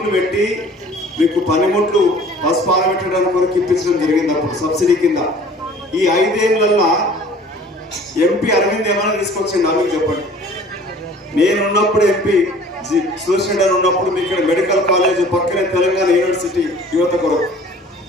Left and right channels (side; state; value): both; normal; correlation 0.49